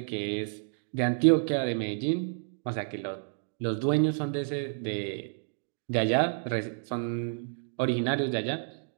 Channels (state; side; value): silent; left; digital silence